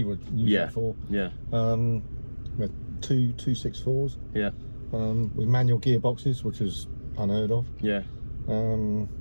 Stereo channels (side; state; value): both; inverted; correlation -1.00